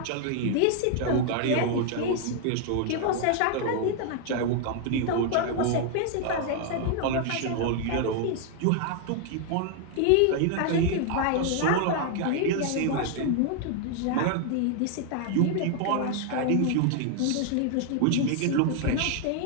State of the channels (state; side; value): different; both; correlation 0.00